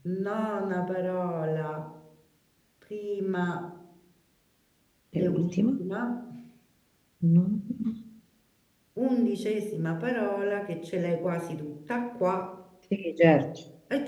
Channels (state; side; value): identical; both; correlation 1.00